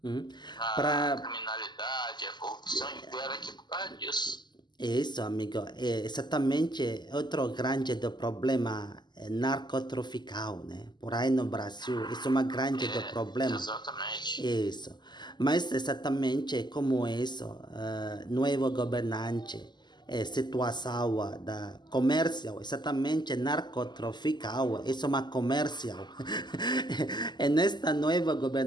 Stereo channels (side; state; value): right; late; 0.21 ms